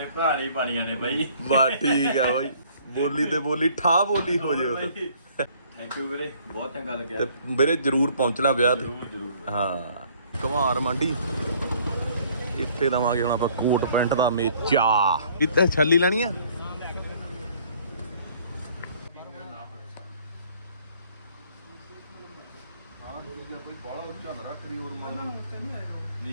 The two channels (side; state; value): both; inverted; correlation -0.59